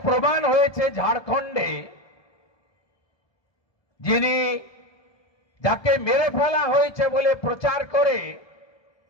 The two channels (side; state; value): right; late; 1.2 ms